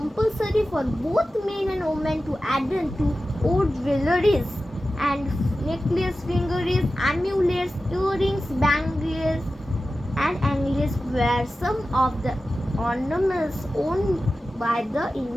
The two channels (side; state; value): both; normal; correlation 0.94